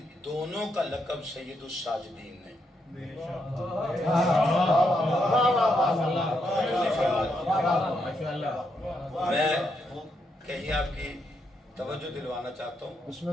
دونوں کا لقب سید الساجدین نے میں کہیں آپ کی توجہ دلوانا چاہتا ہوں، بسم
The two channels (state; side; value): normal; both; correlation 0.79